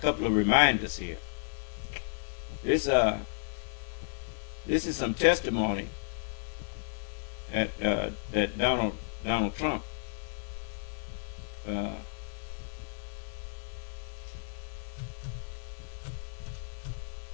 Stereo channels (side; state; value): right; silent; digital silence